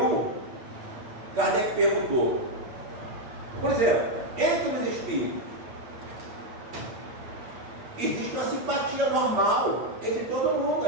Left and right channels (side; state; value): left; late; 8.6 ms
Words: Kardec perguntou, por exemplo, entre os espíritos, existe uma simpatia normal entre todo mundo,